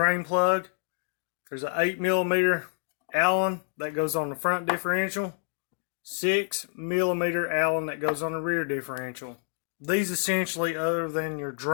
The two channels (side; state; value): right; silent; 57 dB below the other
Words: plug. There's an 8 millimeter Allen that goes on the front differential. 6 millimeter Allen that goes on the rear differential. These essentially, other than your